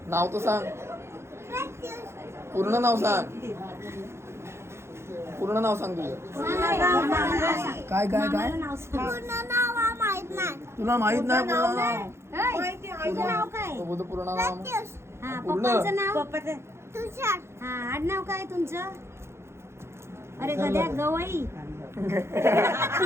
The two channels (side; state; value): left; late; 0.13 ms